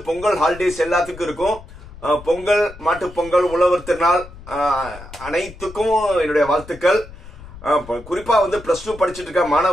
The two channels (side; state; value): left; noise; rumble, 17 dB below the sound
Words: பொங்கல் ஹாலிடேஸ் எல்லாத்துக்கும் இருக்கும். பொங்கல், மாட்டுப் பொங்கல், உழவர் திருநாள் அனைத்துக்கும் என்னுடைய வாழ்த்துக்கள். குறிப்பா வந்து +2 படிச்சுட்டு இருக்க